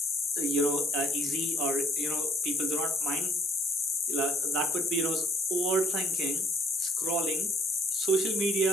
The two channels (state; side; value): normal; both; correlation 0.63